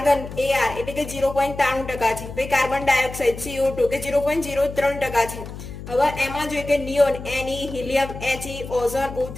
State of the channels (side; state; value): left; noise; hum, 11 dB below the sound